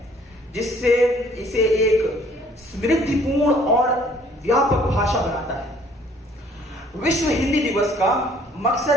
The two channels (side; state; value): both; normal; correlation 0.59